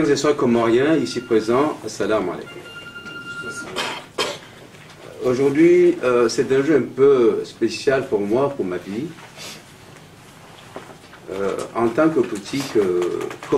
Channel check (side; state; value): both; identical; correlation 1.00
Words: et sœurs comoriens, ici présents, assalamu alaikum. Aujourd'hui, c'est un jeu un peu spécial pour moi, pour ma vie. En tant que politique